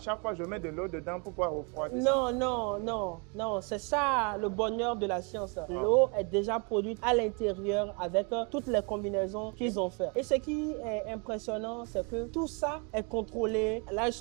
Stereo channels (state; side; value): quieter; left; 33.4 dB